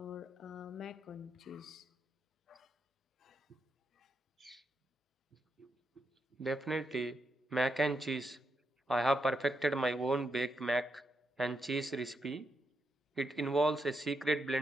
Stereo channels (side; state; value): both; normal; correlation 0.83